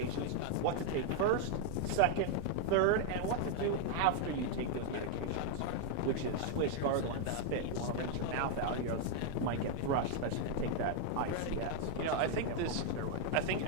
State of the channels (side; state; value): both; different; correlation 0.01